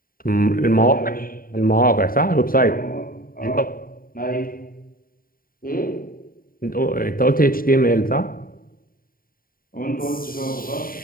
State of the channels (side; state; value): right; late; 0.42 ms